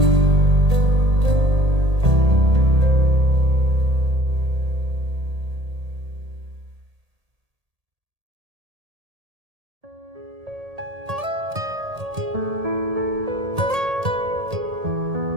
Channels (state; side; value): late; left; 1.8 ms